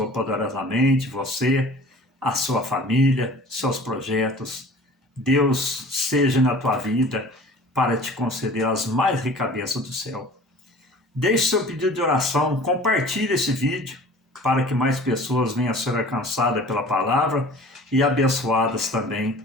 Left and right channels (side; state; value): both; normal; correlation 0.45